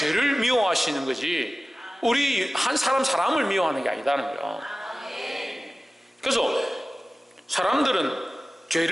미워하시는 거지 우리 한 사람을 미워하는 게 아니다는 거예요. 그래서 사람들은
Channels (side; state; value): both; normal; correlation 0.96